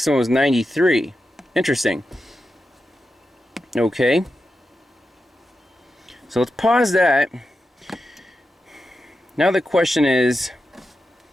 was 93. Interesting. Okay. So let's pause that. Now the question is,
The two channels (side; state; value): both; normal; correlation 0.89